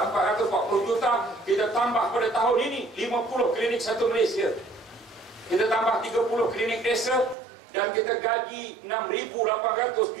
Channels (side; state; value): left; drops out; at 7.4 s